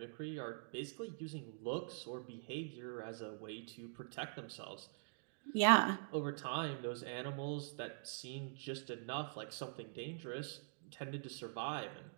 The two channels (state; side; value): silent; left; digital silence